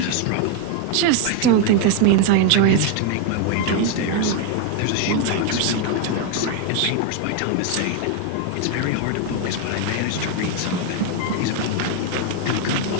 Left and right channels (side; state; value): both; different; correlation 0.01